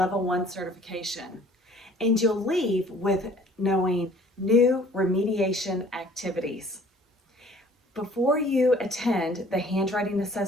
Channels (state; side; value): normal; both; correlation 0.53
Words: 1 certification. And you'll leave with knowing new remediation activities. Before you attend the Handwriting